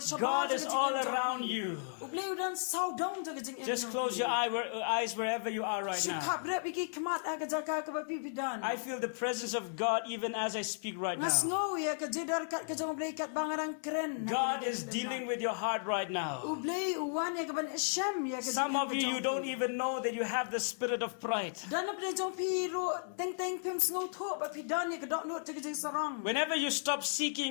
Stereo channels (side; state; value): right; silent; digital silence